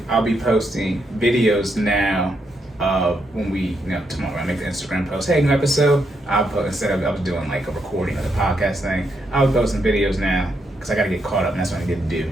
I'll be posting videos now. When we, tomorrow I make the Instagram post, hey, new episode. I'll post, instead of I was doing like a recording of the podcast thing, I'll be posting videos now because I got to get caught up, and that's what I get to do.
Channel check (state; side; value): normal; both; correlation 0.79